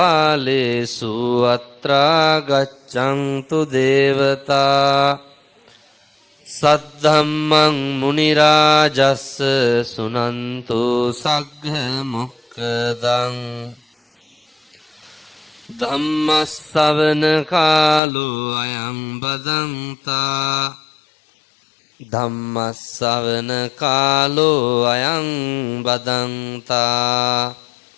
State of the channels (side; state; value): right; drops out; at 18.0 s